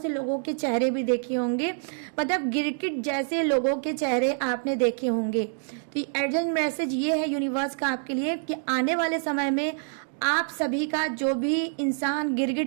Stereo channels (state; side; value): silent; left; digital silence